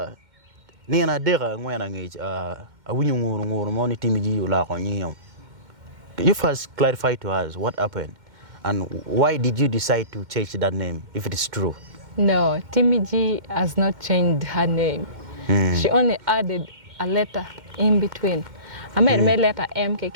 ni na dera ngwana ngi awinyo ngur mo ni Timmi G la ko nyom. You first clarify to us what happened and why did you decide to change that name if it is true? No, Timmi G has not changed her name. She only added a letter in between. I made my letter M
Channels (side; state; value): left; late; 2.1 ms